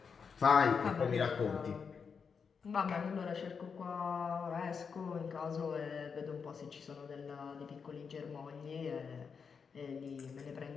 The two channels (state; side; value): quieter; right; 6.0 dB